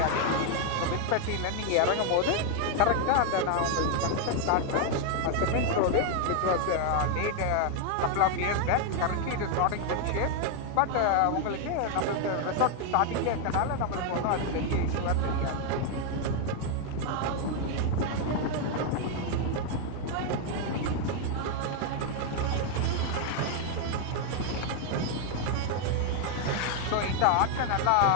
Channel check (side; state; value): both; different; correlation 0.00